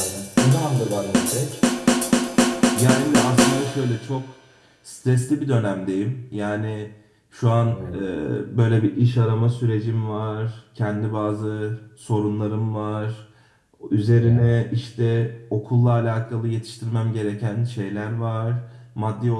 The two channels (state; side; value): identical; both; correlation 1.00